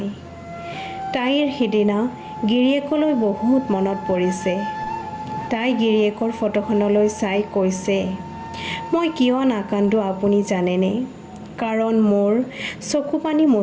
তাইৰ সিদিনা গিৰিয়েকলৈ বহুত মনত পৰিছে। তাই গিৰিয়েকৰ ফটোখনলৈ চাই কৈছে, মই কিয় নাকান্দো আপুনি জানেনে? কাৰণ মোৰ চকুপানী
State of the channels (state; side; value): identical; both; correlation 1.00